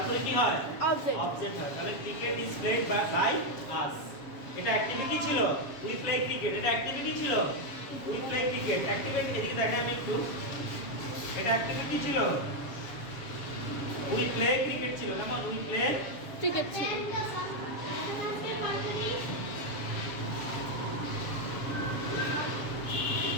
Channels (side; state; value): right; late; 7.3 ms